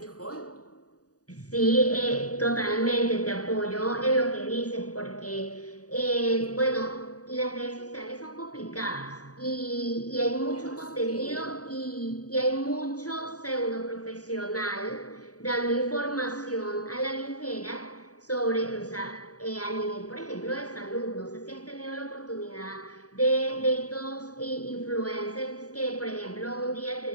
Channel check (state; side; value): late; right; 0.67 ms